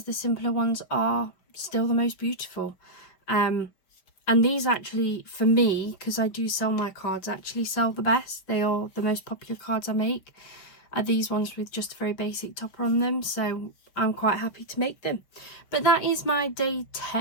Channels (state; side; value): late; right; 5.6 ms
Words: the simpler ones are still the most beautiful. And these actually, for me, because I do sell my cards, actually sell the best. They are the most popular cards I make, are these ones with just a very basic topper on them. So I'm quite happy to make them. But that is my day